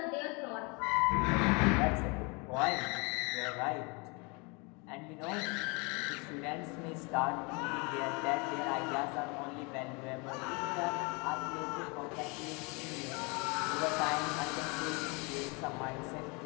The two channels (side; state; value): right; quieter; 30.2 dB